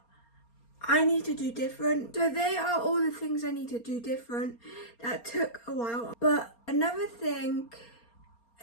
I need to do different. So they are all the things I need to do different that took a while. But another thing,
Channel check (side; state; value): right; late; 4.3 ms